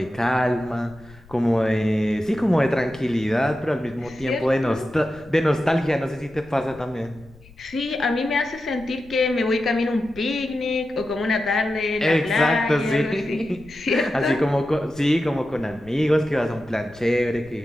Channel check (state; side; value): noise; left; rumble, 23 dB below the sound